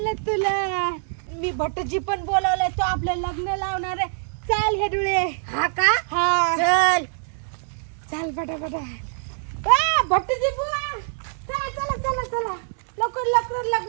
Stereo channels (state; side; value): silent; left; digital silence